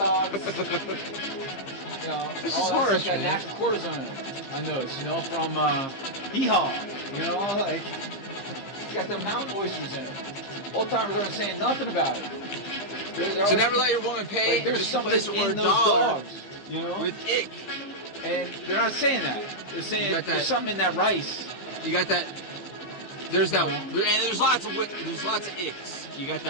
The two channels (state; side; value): late; right; 15 ms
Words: You know, This all is that harsh, stuff got man. natural cortisone. I know, you know, from Hee-Haw. You know, like it's got the mountain oysters in it. Old timers aren't saying nothing about it. So never let your woman pay. Like, there's just something replace the in word those dollar dogs, you know, with ick. and they're not saying that. They're saying got that- there's something in that rice. You got that. There's that, Yeah. and there's lots of icks. You got